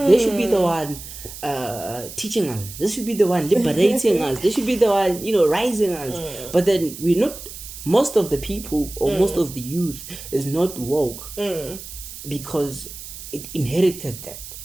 they should be the one teaching us. They should be the one liberating us. They should be the one, rising us. But then we're not. Most of the people or most of the youth is not woke because it inherited that.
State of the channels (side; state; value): right; noise; hiss, 13 dB below the sound